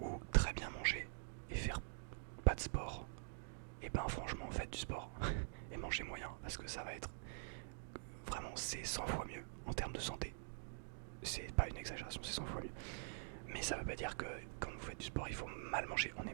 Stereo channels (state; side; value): silent; left; digital silence